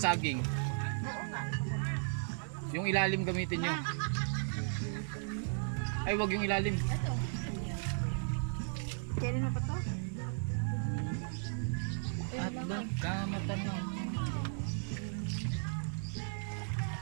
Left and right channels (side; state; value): left; silent; digital silence